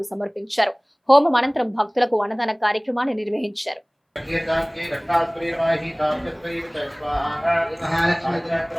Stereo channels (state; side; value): identical; both; correlation 1.00